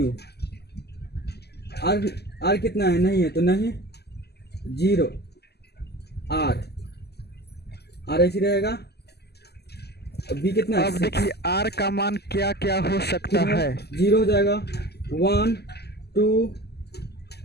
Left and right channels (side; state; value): right; late; 0.47 ms